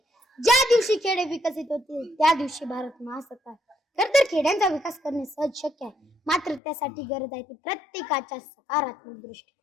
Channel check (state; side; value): drops out; right; at 6.6 s